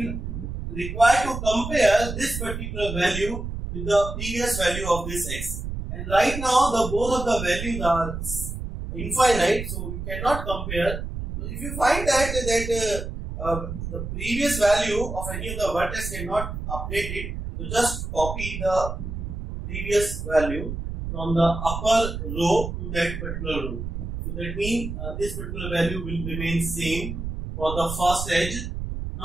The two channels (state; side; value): noise; right; rumble, 6 dB below the sound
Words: require to compare this particular value with the previous value of this x. And right now the both of the values are infinite, so we cannot compare. If you find that the previous value of any of the vertex cannot update it, so just copy the previous value from the upper row to that particular row. So that means this particular value will remain same for the first edge.